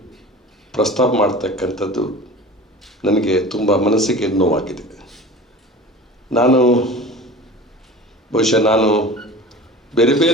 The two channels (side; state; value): both; normal; correlation 0.37